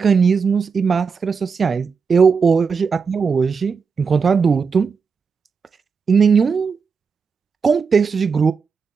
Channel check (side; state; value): left; quieter; 5.6 dB